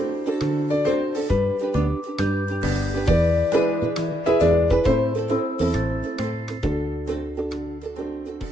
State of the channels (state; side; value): normal; both; correlation 0.78